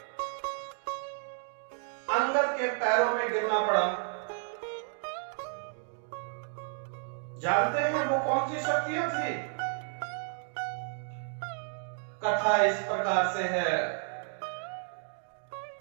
अंगद के पैरों में गिरना पड़ा? जानते हैं वो कौन सी शक्तियां थी? कथा इस प्रकार से है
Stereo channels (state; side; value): silent; left; 57 dB below the other